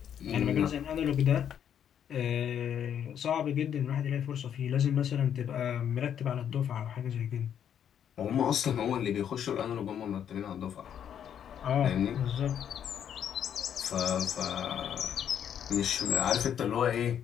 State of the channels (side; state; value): right; quieter; 9.1 dB